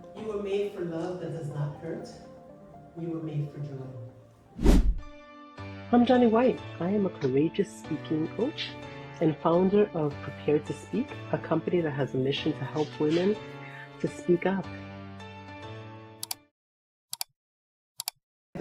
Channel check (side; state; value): both; identical; correlation 1.00